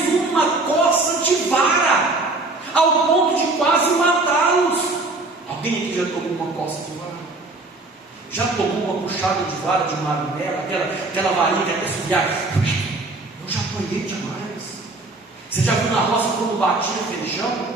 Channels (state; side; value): quieter; left; 3.1 dB